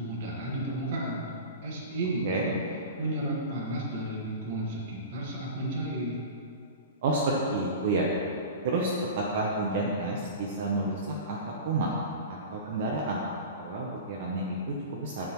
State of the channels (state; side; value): inverted; both; correlation -0.30